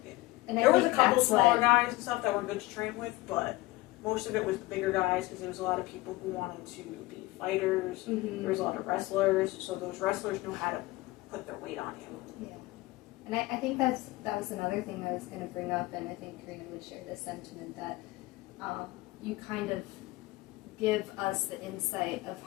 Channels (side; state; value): right; quieter; 19.7 dB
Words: and I There was a think couple that's smaller what- guys and stuff that were good to train with, but most of it was the bigger guys because there was a lot of people who wanted to be fighters. Mhm. There was a lot of wrestlers, so those wrestlers knew how to put their weight on you. Yeah. And I think that was another thing I was going to bring up, and I think Karina would share this sentiment that you kind of give us the insight of